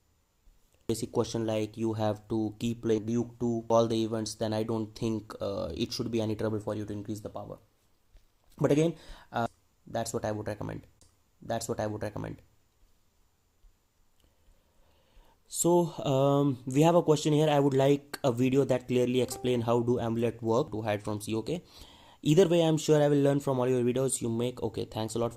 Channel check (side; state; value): both; identical; correlation 1.00